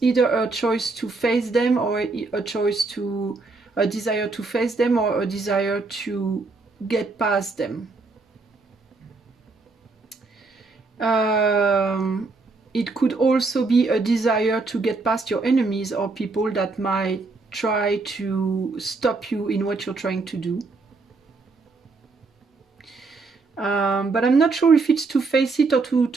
either a choice to face them, or a desire to face them, or a desire to get past them. It could also be a desire to get past your enemies or people that might try to stop you in what you're trying to do. But I'm not sure if it's to face it or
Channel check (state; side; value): quieter; left; 3.8 dB